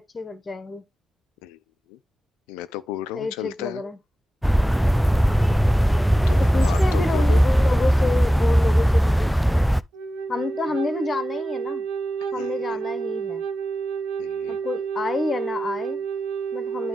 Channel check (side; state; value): both; normal; correlation 0.93